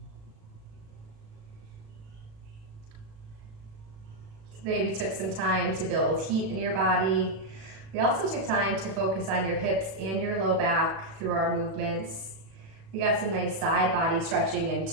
Today we took some time to build heat in your body. We also took time to focus on your hips and your low back through our movements. We got some nice side body stretching in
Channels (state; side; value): late; left; 36 ms